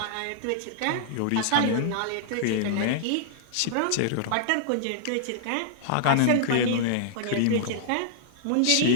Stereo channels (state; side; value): different; both; correlation -0.01